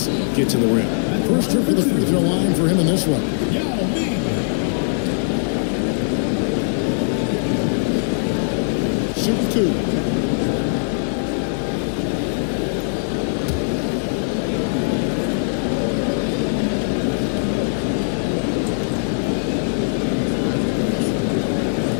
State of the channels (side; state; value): right; silent; digital silence